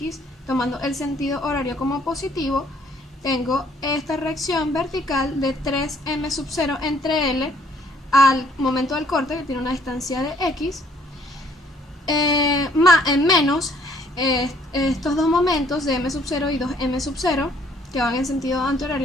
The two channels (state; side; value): normal; both; correlation 0.62